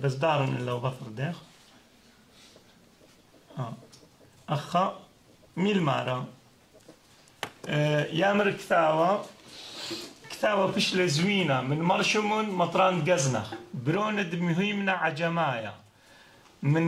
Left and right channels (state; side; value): identical; both; correlation 1.00